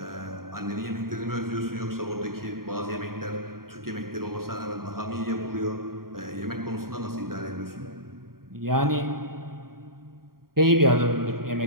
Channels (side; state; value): left; late; 0.93 ms